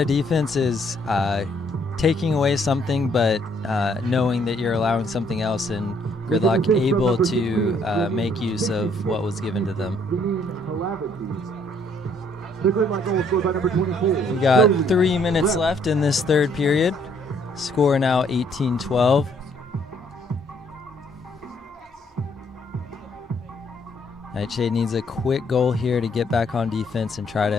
defense is taking away something, but knowing that you're allowing something else, and Gridlock able to make use of what was given to them. We got 3 minutes left in this third period. Score now 18-12. NightShade needs a quick goal here to get back on defense and try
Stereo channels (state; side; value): normal; both; correlation 0.66